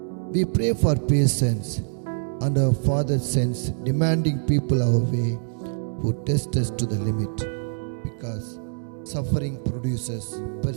We pray for patience, and our Father sends demanding people our way who test us to the limit, because suffering produces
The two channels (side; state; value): left; silent; digital silence